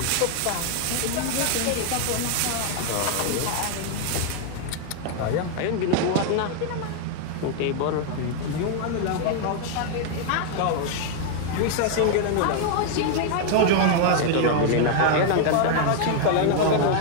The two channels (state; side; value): different; both; correlation 0.00